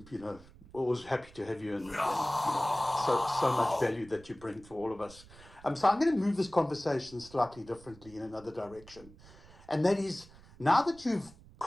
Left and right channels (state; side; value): noise; right; rumble, 22 dB below the sound